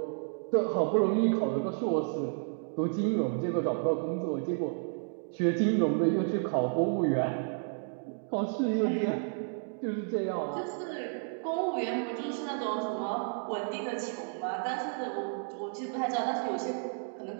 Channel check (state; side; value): silent; left; 57 dB below the other